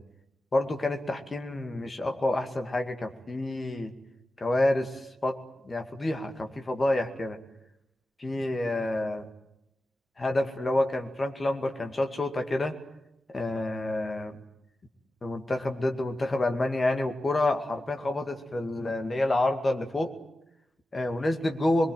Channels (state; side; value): normal; both; correlation 0.93